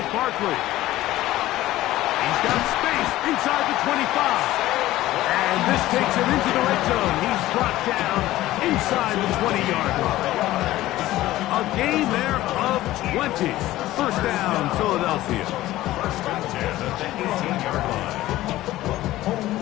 Barkley. He's got space inside the 25. And this takes him into the red zone. He's brought down inside the 20-yard line. A gain there of 20. First down, Philadelphia. First and 10 at the 18-yard line.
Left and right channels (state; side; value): quieter; right; 15.8 dB